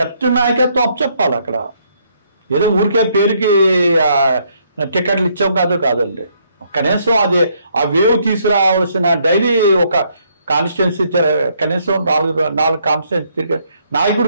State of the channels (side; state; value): both; inverted; correlation -0.70